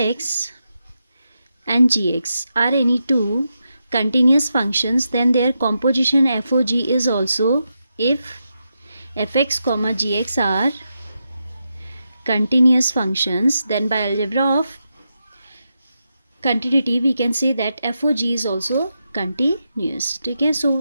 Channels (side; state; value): both; inverted; correlation -0.86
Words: and gx are any two continuous functions, then their composition fog is also if fx comma gx are continuous functions, then by algebra of continuity we can say that fog is also continuous. Okay,